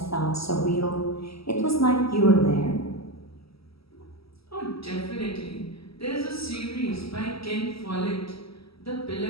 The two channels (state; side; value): late; right; 0.76 ms